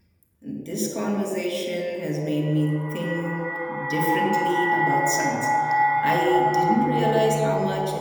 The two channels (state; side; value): identical; both; correlation 1.00